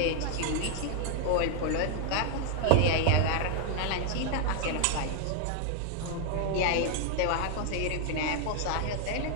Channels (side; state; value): both; different; correlation 0.00